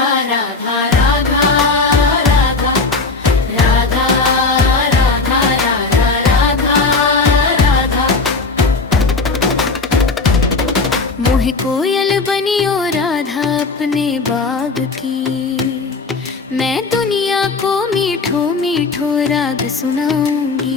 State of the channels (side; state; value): right; quieter; 4.0 dB